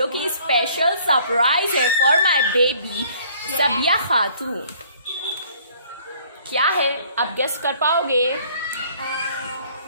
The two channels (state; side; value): inverted; both; correlation -0.58